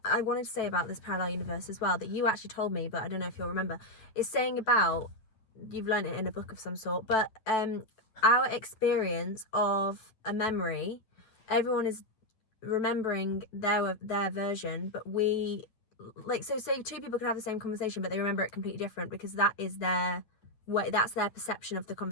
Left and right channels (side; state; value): right; late; 9.1 ms